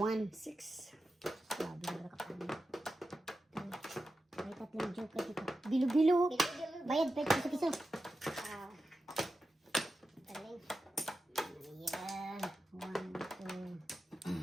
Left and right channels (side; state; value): both; normal; correlation 0.91